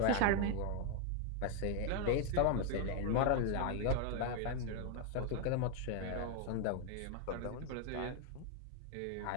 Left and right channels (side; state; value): both; different; correlation 0.00